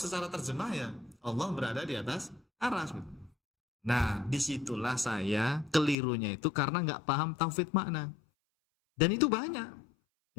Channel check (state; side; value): drops out; right; at 6.0 s